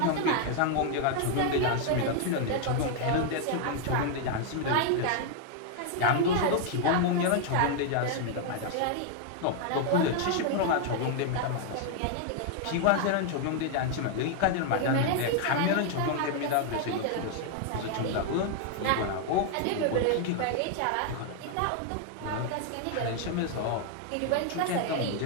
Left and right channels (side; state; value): both; different; correlation 0.00